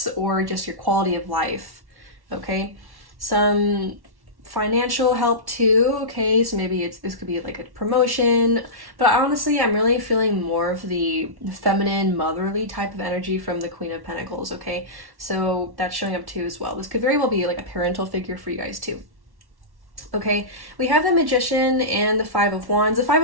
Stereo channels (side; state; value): left; late; 1.1 ms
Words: or just your quality of life. Okay, some financial help too. Okay, so maybe this could be like a promotion, but honestly I'm really feeling more of the feminine motherly type of energy from the Queen of Pentacles. Okay, so that's showing up too as well. This could very well be like a parental figure for you guys too. Okay, we have the Magician and the 5 of Wands. The 5